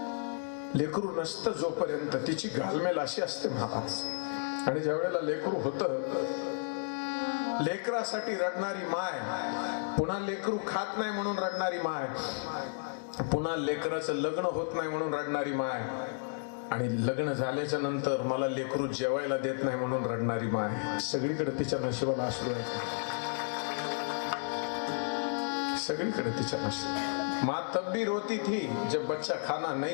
लेकरू नसतं जोपर्यंत तिची घालमेल अशी असते महाराज. आणि ज्या वेळेला लेकरू होतं, लेकरासाठी रडणारी माय, पुन्हा लेकरू खात नाही म्हणून रडणारी माय, पुन्हा लेकराचं लग्न होत नाही म्हणून रडणारी माय, आणि लग्न झाल्याच्या नंतर मला लेकरू जेवायला देत नाही म्हणून रडणारी माय. सगळीकडे तिच्या नशिबाला अश्रू आहे, सगळीकडे तिच्या नशिबाला. माँ तब भी रोती थी जब बच्चा खाना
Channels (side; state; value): right; silent; digital silence